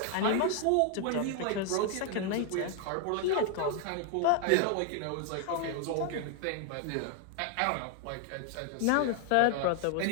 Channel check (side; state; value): both; different; correlation 0.00